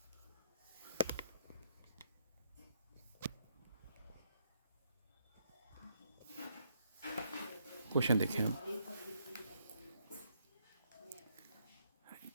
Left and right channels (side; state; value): both; inverted; correlation -0.73